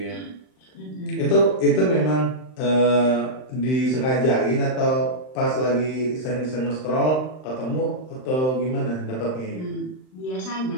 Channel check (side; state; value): right; late; 39 ms